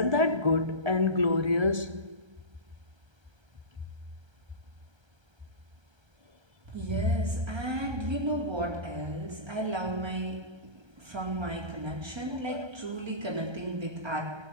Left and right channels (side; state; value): left; late; 1.3 ms